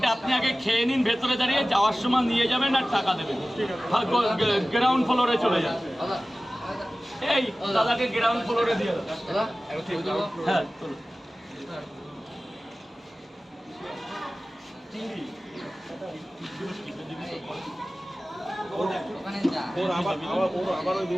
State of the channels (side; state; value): both; normal; correlation 0.97